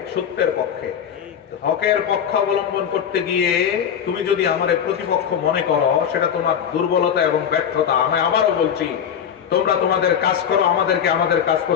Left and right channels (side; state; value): right; quieter; 8.4 dB